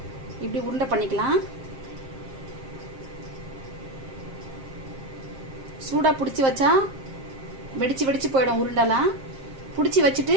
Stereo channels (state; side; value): late; left; 7.5 ms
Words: இப்படி உருண்டை பண்ணிக்கலாம். சூடா பிடிச்சி வச்சா வெடிச்சு போயிடும் உருண்டெல்லாம். பிடிச்சி